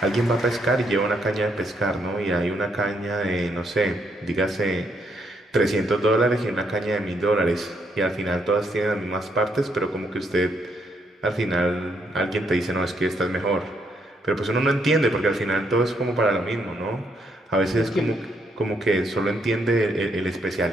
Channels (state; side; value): normal; both; correlation 0.74